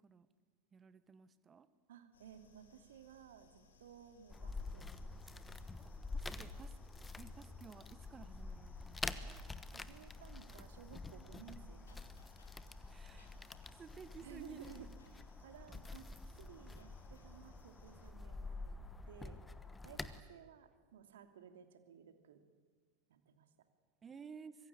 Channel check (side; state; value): both; normal; correlation 0.75